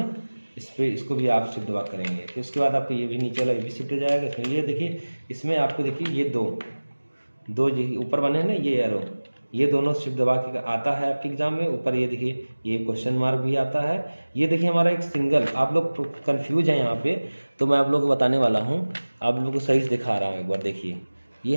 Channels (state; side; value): inverted; both; correlation -1.00